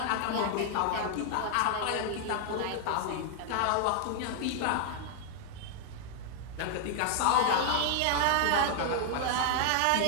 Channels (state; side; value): different; both; correlation 0.00